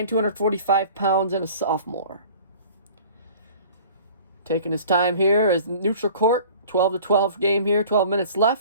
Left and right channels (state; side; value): inverted; both; correlation -0.46